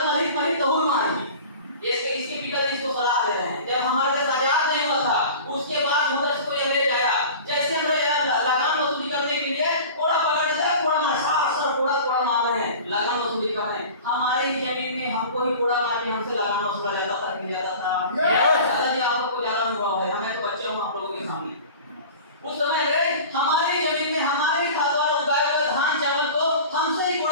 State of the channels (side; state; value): both; inverted; correlation -0.39